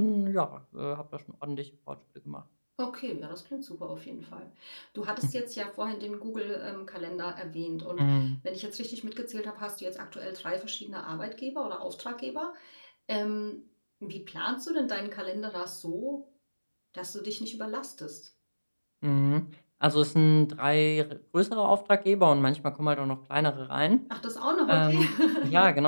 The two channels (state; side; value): inverted; both; correlation -1.00